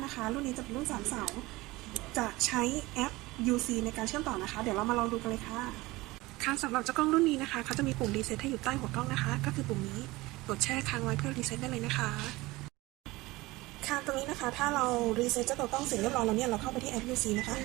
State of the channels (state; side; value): quieter; left; 20.5 dB